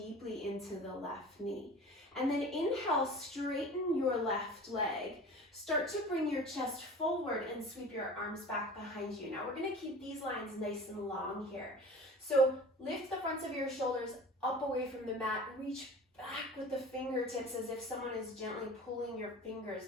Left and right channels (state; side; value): normal; both; correlation 0.39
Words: into the left knee. And then inhale, straighten your left leg. Start to bring your chest forward and sweep your arms back behind you. Now we're gonna keep these lines nice and long here. So lift the fronts of your shoulders up away from the mat, reach back with the fingertips as if someone is gently pulling your fingers